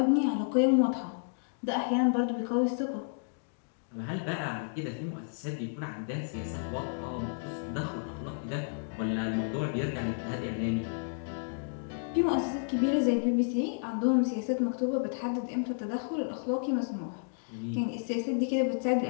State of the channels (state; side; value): silent; right; digital silence